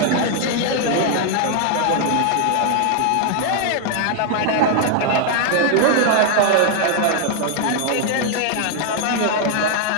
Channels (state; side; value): different; both; correlation 0.00